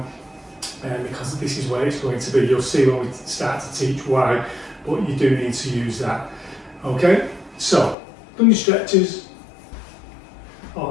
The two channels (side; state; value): right; drops out; at 8.0 s